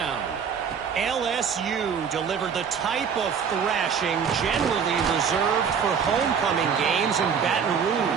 LSU delivered the type of thrashing generally reserved for homecoming games in Baton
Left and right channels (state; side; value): quieter; left; 6.8 dB